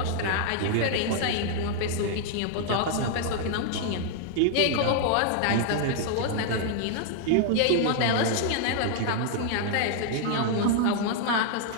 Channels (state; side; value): different; both; correlation 0.00